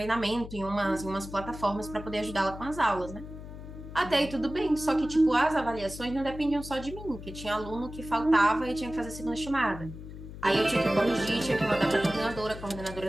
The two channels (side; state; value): left; noise; hum, 12 dB below the sound